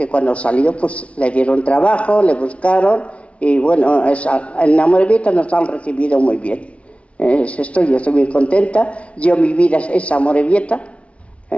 cuando salió pues le dieron trabajo, le buscaron, y bueno, en Amorebieta nos han recibido muy bien. Yo estoy muy contenta. Mi vida es Amorebieta.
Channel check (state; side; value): late; right; 0.062 ms